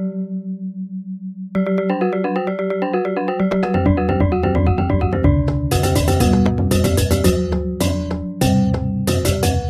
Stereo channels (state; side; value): identical; both; correlation 1.00